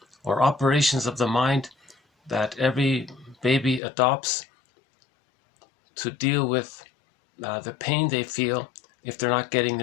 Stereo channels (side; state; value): right; drops out; at 3.8 s